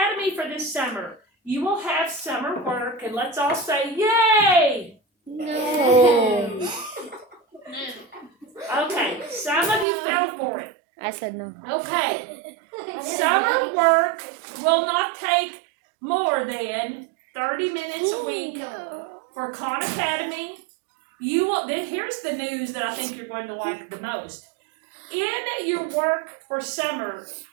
for this summer. You will have summer work, and let's all say, yay! No. Okay, some of you fell for it. I said no. Okay. Summer work will not take more than 30 minutes a week for Khan Academy. You will. Here's the news that I think you're going to like the most. In your work for summer,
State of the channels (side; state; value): left; drops out; at 9.9 s